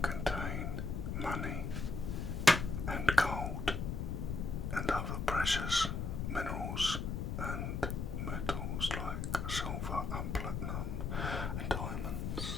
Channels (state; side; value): noise; left; rumble, 2 dB below the sound